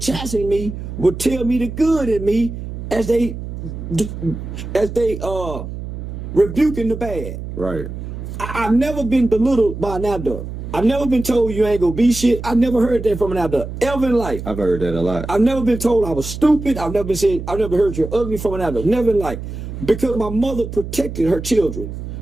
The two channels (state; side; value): noise; right; hum, 8 dB below the sound